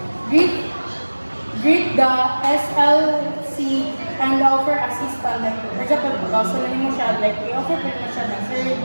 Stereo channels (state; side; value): inverted; both; correlation -1.00